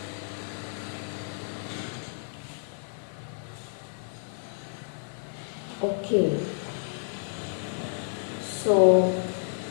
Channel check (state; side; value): silent; right; digital silence